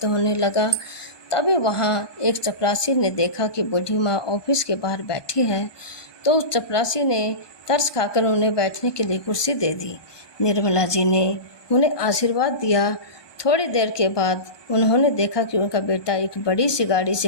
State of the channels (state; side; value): late; right; 1.2 ms